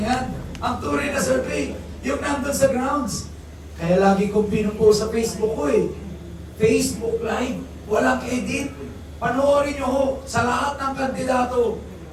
Ang tunay na survey, yung nandun sa grounds. Kaya lagi kong pinupost sa Facebook ko Facebook Live, walang edit. Panoorin nyo ho, sa lahat ng kandidato,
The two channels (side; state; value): both; identical; correlation 1.00